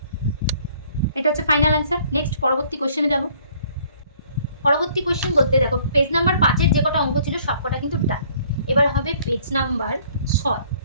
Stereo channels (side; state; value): both; inverted; correlation -0.59